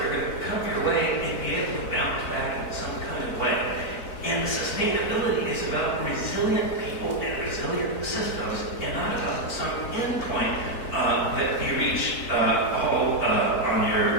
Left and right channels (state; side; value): late; right; 4.4 ms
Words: are going to come your way and be able to bounce back in some kind of way. And sustainability is about resilient people and resilient systems, and not about some end point that you reach all on